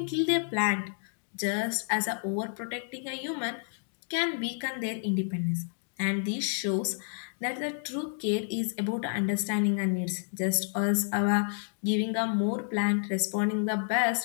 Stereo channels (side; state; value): right; silent; 58 dB below the other